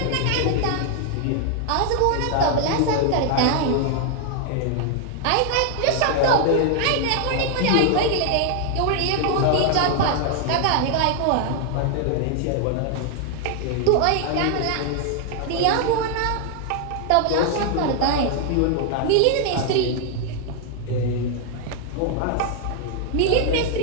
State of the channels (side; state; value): both; different; correlation 0.00